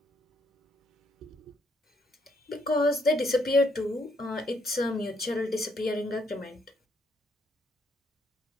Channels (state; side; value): normal; both; correlation 0.72